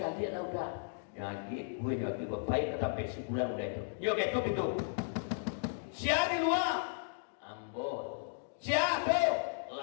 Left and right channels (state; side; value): silent; right; digital silence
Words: lah udah nyagi gue nyagi baik sampai sebulan udah itu yuk itu siapa di luar ambo siapa